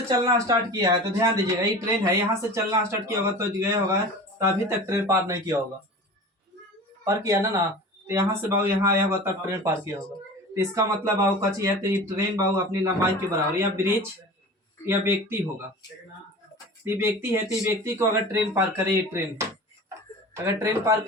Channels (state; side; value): normal; both; correlation 0.37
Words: चलना स्टार्ट किया है, तो ध्यान दीजिएगा ये ट्रेन है, यहाँ से चलना स्टार्ट किया होगा तो गया होगा, तो अभी तक ट्रेन पार नहीं किया होगा, पार किया ना तो यहाँ से बाबू यहाँ आया होगा तब ट्रेन पार किया होगा। तो इसका मतलब बाबू कच्ची है, तो ये ट्रेन बाबू अपनी लंबाई के बराबर या ब्रिज या व्यक्ति होगा। ये व्यक्ति है, तो ये व्यक्ति को अगर ट्रेन पार करे, ये ट्रेन अगर ट्रेन पार